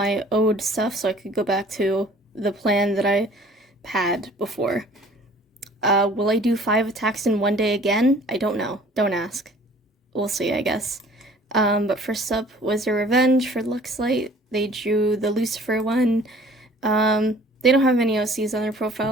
ode stuff so I could go back to the plan that I had before. Will I do 5 attacks in one day again? I don't know. Don't ask. We'll see, I guess. But first up was a revenge for Luxlight. They drew the Lucifer one. They don't have any OCs on their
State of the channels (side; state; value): both; normal; correlation 0.51